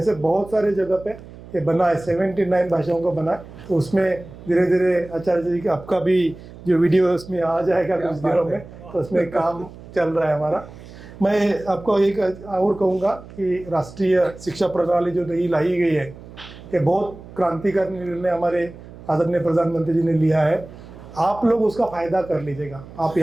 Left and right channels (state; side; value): noise; right; hum, 17 dB below the sound